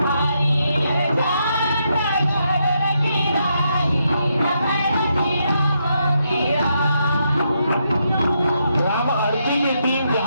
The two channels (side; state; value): both; inverted; correlation -0.80